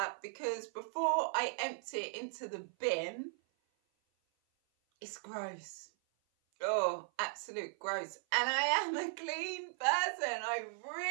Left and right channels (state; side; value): silent; left; 53 dB below the other